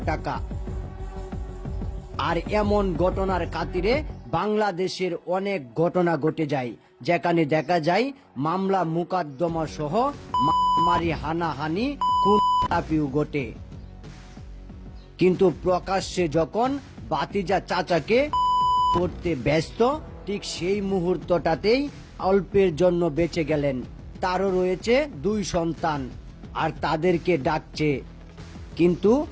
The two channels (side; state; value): both; identical; correlation 1.00